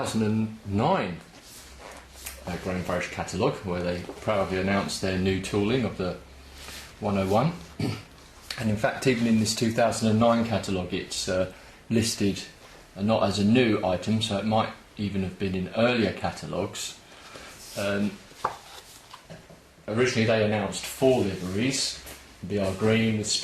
Graham Farish catalogue, where they proudly announced their new tooling of the 101. And in fact, even in this 2009 catalogue, it's listed not as a new item, so it might even have been in earlier catalogues. Originally they announced 4 liveries: BR Green with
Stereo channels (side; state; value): both; identical; correlation 1.00